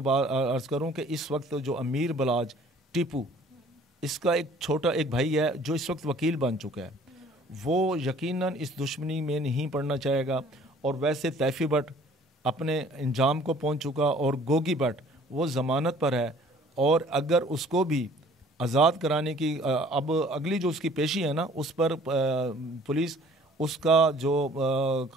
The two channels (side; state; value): both; normal; correlation 0.54